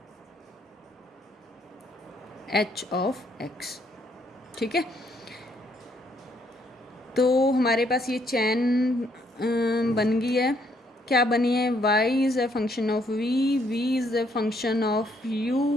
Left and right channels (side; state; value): both; normal; correlation 0.70